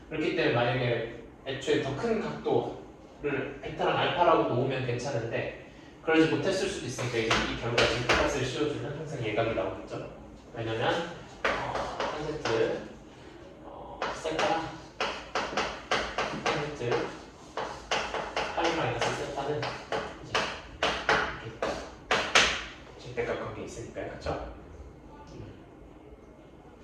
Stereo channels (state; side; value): identical; both; correlation 1.00